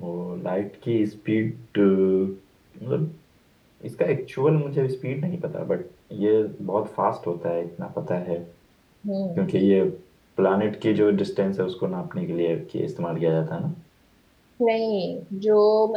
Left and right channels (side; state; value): both; identical; correlation 1.00